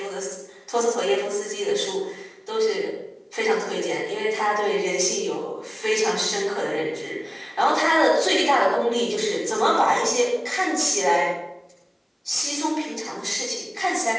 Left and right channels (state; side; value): identical; both; correlation 1.00